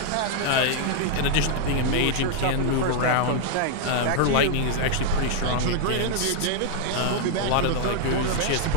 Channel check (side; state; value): both; different; correlation 0.00